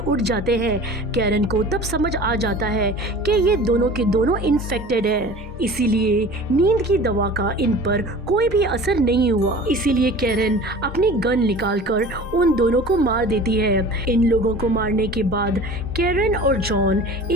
जाते हैं। कैरन को तब समझ आ जाता है कि ये दोनों के दोनों इन्फेक्टेड है, इसीलिए नींद की दवा का इन पर कोई भी असर नहीं हुआ। इसीलिए कैरन अपनी गन निकालकर उन दोनों को मार देती है। इन लोगों को मारने के बाद कैरन और जॉन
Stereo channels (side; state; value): both; normal; correlation 0.41